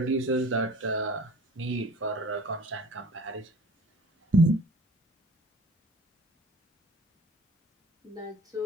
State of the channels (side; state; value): both; normal; correlation 0.45